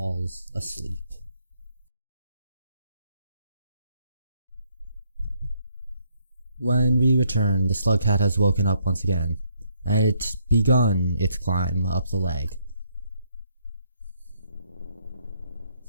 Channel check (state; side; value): inverted; both; correlation -0.71